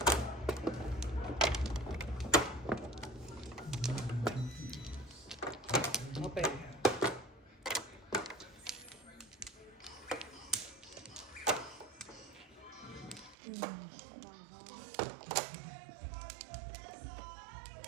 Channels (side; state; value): left; drops out; at 13.4 s